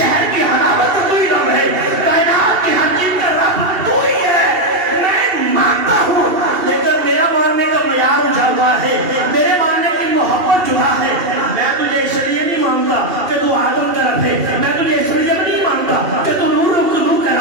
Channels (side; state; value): left; late; 2.7 ms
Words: کی حلاوت کا کوئی رب ہے، کائنات کی ہر چیز کا رب تو ہی ہے۔ میں مانتا ہوں لیکن میرا ماننے کا معیار جدا ہے، میرے ماننے کی محبت جدا ہے۔ میں تجھے اس لیے نہیں مانتا کہ تو آدم کا رب ہے، میں تجھے اس لیے نہیں مانتا کہ تو نور کا